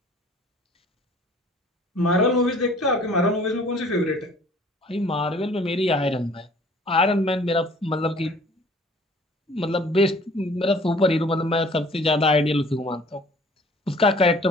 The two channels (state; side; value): normal; both; correlation 0.52